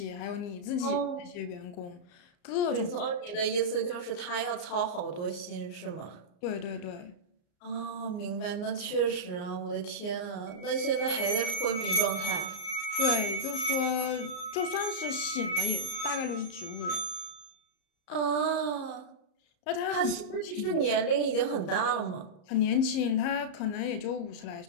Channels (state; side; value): late; right; 34 ms